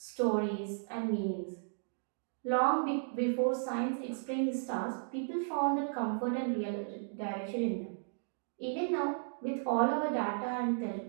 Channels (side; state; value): left; silent; digital silence